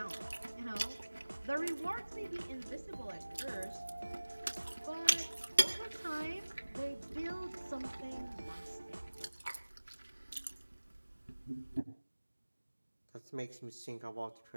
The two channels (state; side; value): inverted; both; correlation -1.00